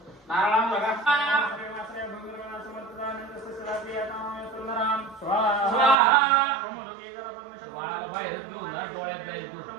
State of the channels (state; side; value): drops out; left; at 6.0 s